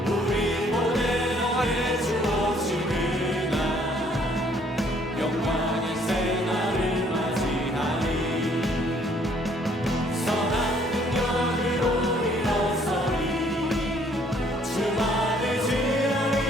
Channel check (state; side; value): normal; both; correlation 0.63